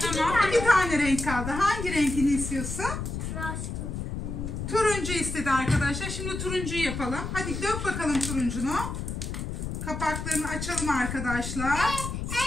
Tamam, iki tane renk kaldı. Hangi renkini istiyorsun? Turuncu istedi arkadaşlar. Şimdi turuncuyu yapalım. Hadi dök bakalım turuncunu. Kapaklarını açalım arkadaşlar.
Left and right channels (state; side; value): noise; left; rumble, 5 dB below the sound